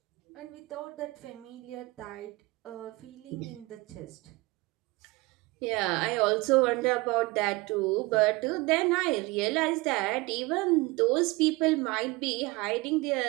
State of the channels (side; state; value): left; quieter; 23.3 dB